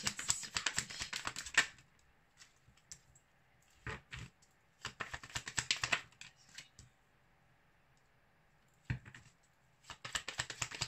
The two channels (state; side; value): identical; both; correlation 1.00